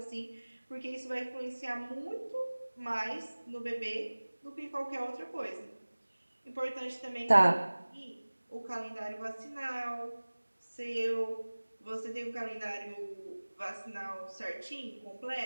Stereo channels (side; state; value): both; inverted; correlation -1.00